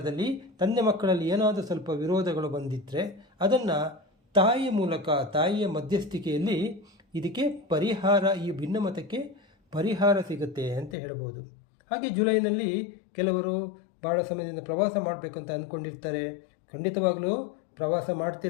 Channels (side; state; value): right; drops out; at 11.0 s